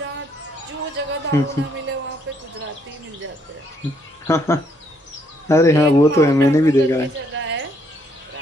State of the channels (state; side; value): normal; both; correlation 0.71